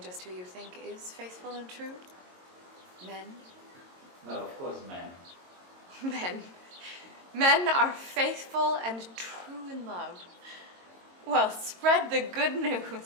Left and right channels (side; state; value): left; late; 22 ms